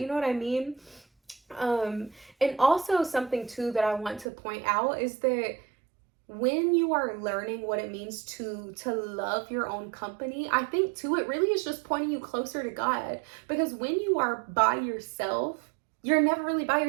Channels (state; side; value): drops out; left; at 4.2 s